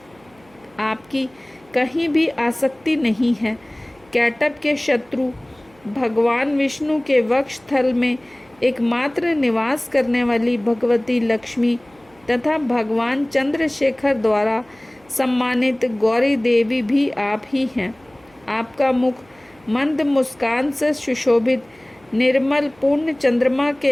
आपकी कहीं भी आसक्ति नहीं है। कैटभ के शत्रु भगवान विष्णु के वक्ष स्थल में एकमात्र निवास करने वाली भगवती लक्ष्मी तथा भगवान चंद्रशेखर द्वारा सम्मानित गौरी देवी भी आप ही हैं। आपका मुख मंद मुस्कान से सुशोभित निर्मल पूर्ण चंद्रमा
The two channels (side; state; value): right; noise; hum, 30 dB below the sound